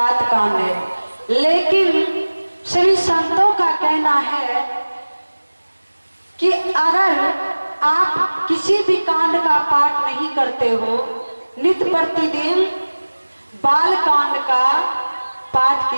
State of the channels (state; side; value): inverted; both; correlation -1.00